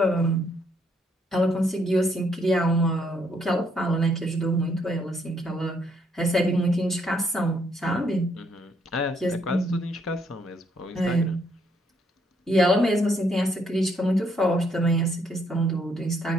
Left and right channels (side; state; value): both; normal; correlation 0.71